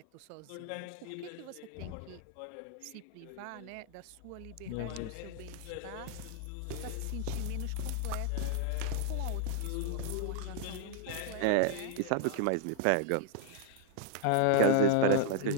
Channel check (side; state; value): both; different; correlation 0.00